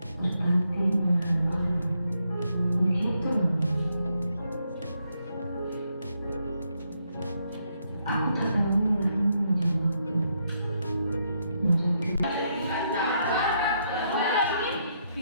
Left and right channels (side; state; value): both; inverted; correlation -0.77